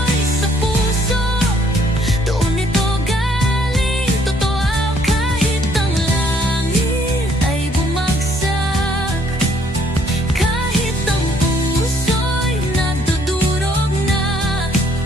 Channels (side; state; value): both; normal; correlation 0.65